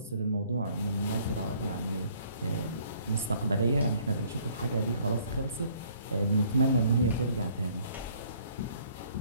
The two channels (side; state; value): both; inverted; correlation -0.60